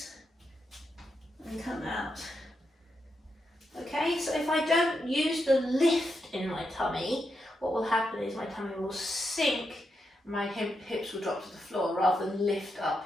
and come out. Okay, so if I don't use the lift in my tummy, what will happen is my tummy will sink, my hips will drop to the floor rather than lift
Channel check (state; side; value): normal; both; correlation 0.84